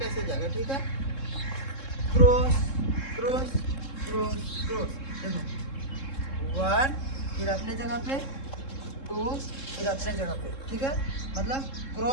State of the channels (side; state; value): right; late; 3.7 ms